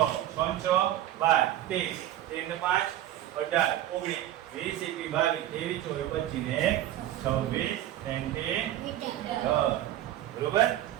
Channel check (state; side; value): quieter; left; 13.1 dB